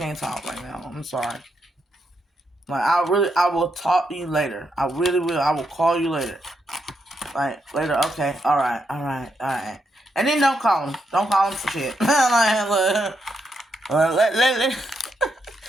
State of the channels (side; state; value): both; normal; correlation 0.81